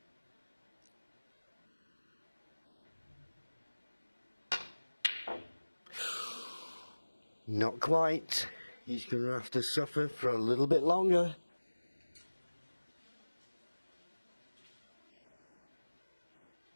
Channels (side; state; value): both; inverted; correlation -1.00